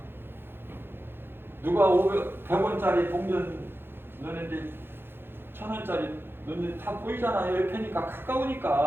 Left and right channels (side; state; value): left; late; 0.10 ms